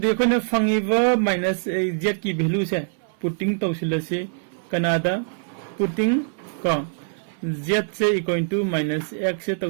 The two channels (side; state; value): left; silent; 61 dB below the other